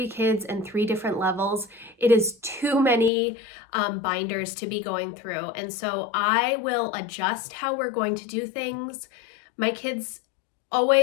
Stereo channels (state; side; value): drops out; right; at 3.1 s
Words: kids and 3 different levels, it is too many binders to be going through. And so I will adjust how we're going to do things. My kids